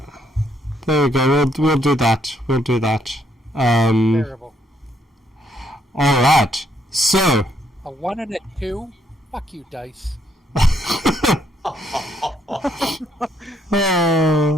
There we go. We'll do that. We'll do that. Terrible. All right. So. A 1 and a 2? Fuck you, dice.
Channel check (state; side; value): normal; both; correlation 0.72